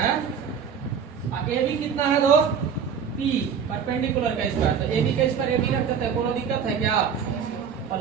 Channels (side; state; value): left; quieter; 7.1 dB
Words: AB कितना है दोस्त? P परपेंडिकुलर का स्क्वायर। तो AB का स्क्वायर AB रख देते हैं, कोनो दिक्कत है क्या?